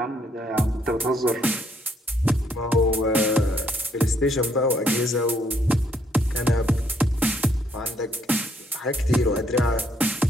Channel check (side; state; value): both; normal; correlation 0.70